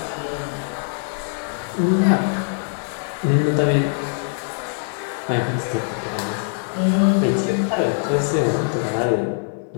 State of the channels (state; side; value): silent; right; 64 dB below the other